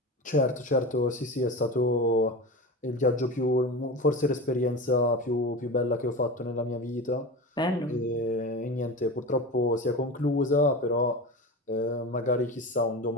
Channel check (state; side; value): normal; both; correlation 0.27